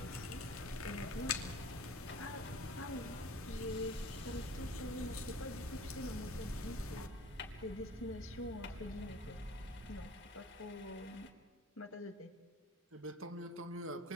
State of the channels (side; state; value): both; normal; correlation 0.46